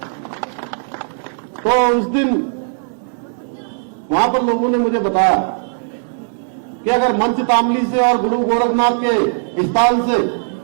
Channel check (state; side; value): silent; left; 64 dB below the other